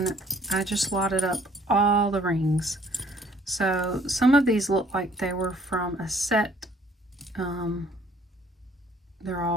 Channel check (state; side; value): normal; both; correlation 0.59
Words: I just lotted up all the rings. So some of these look like they were from a set. They're